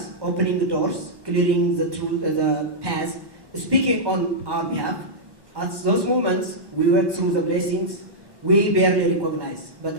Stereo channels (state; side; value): late; left; 1.1 ms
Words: opening the doors, clearing the path, speaking on our behalf. At those moments, we work through the blessings we barely recognize, but